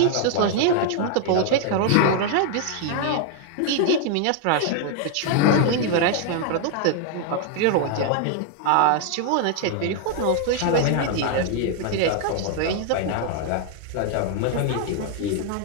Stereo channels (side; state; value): both; different; correlation 0.00